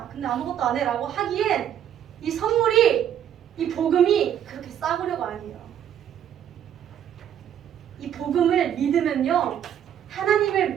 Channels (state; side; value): quieter; left; 9.9 dB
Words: 근데 아무것도 안 해 라고 하기엔 이 선물이, 이 복음이 그렇게 싸구려가 아니에요. 이 복음을 믿으면요, 하나님을